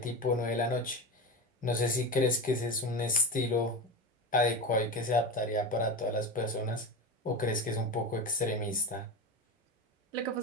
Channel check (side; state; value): both; normal; correlation 0.24